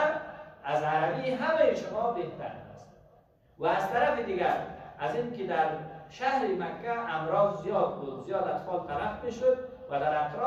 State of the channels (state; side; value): identical; both; correlation 1.00